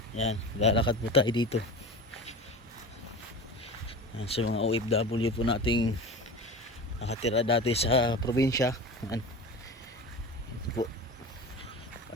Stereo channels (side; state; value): both; normal; correlation 0.32